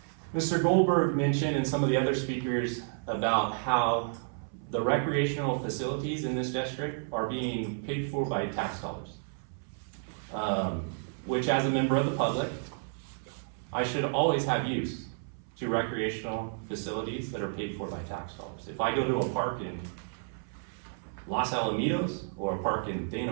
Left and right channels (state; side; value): silent; left; 57 dB below the other